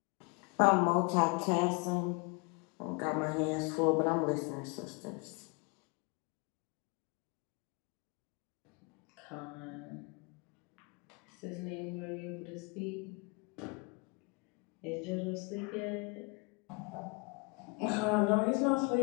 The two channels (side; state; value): right; quieter; 31.1 dB